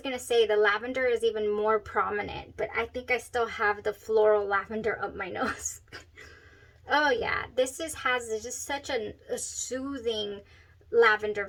to say the lavender is even more prominent, but I think I still have the floral lavender up my nose. Oh yeah, this has just such a soothing lavender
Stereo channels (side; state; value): both; identical; correlation 1.00